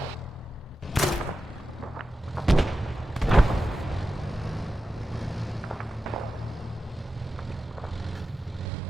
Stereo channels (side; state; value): both; normal; correlation 0.92